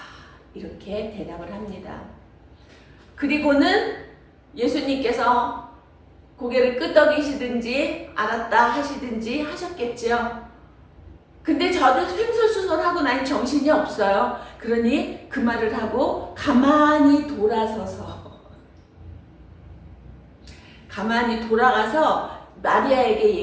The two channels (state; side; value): identical; both; correlation 1.00